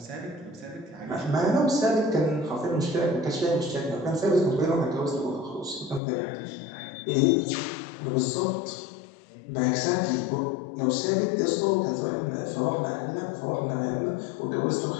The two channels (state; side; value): drops out; right; at 6.0 s